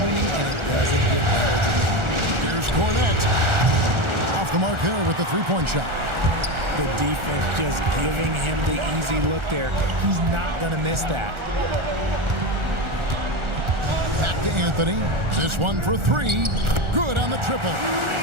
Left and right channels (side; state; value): left; late; 1.4 ms